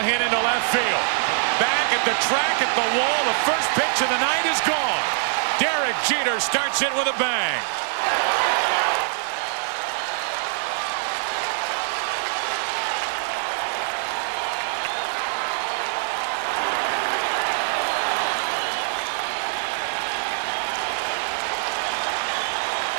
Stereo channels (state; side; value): silent; left; digital silence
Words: hit into left field. Back at the track at the wall. The first pitch of the night is gone. Derek Jeter starts it with a bang.